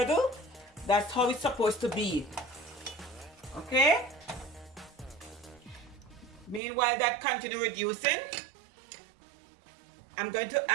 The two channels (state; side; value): drops out; left; at 6.6 s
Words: That's how it's supposed to be. Okay, meanwhile that continue reducing, I'm going to